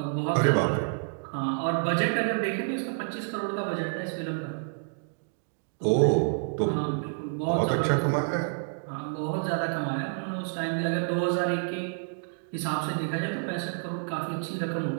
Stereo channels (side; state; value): left; silent; digital silence